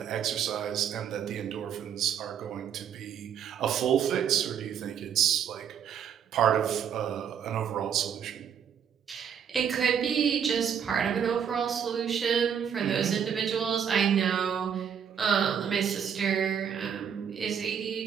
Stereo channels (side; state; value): left; quieter; 8.1 dB